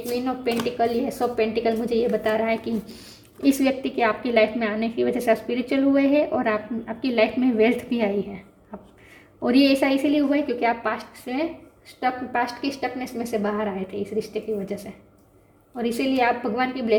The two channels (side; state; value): both; identical; correlation 1.00